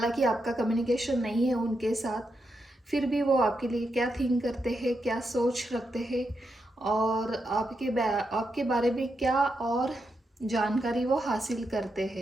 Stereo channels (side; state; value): both; normal; correlation 0.84